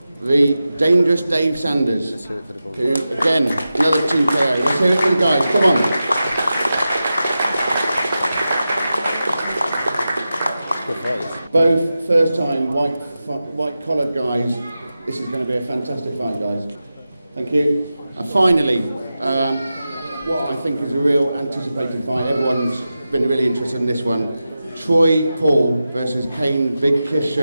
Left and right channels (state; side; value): inverted; both; correlation -0.92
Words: the Dangerous Dave Sanders, who, again, another Team KO. Let's hear it for the guys, come on. Both first-time white-collared guys. This is going to be a fantastic fight, guys. Thank you. And finally, what I think is a real anticipated fight. Everyone's been really interested in this one. Troy Paul versus Payne Big Kiss